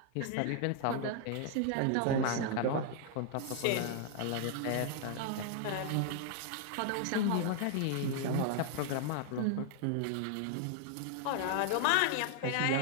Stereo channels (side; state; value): both; different; correlation 0.00